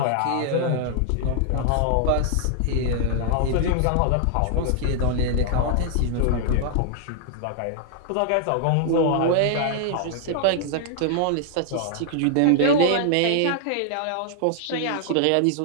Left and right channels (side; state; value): both; different; correlation -0.01